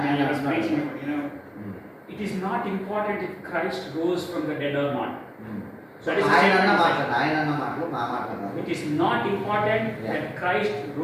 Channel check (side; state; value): both; identical; correlation 1.00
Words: I was preaching, you know, it is not important if Christ rose from the dead or not. That is the ఆయన అన్న statement. మాటలు మా మాటలు. It is not important that Christ